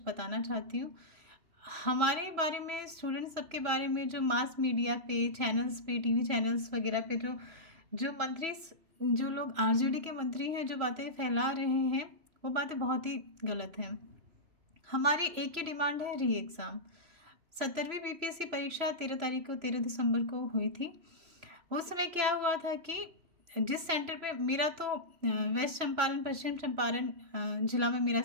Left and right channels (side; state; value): left; late; 3.0 ms